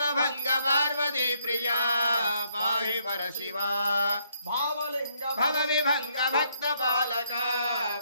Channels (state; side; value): inverted; both; correlation -0.70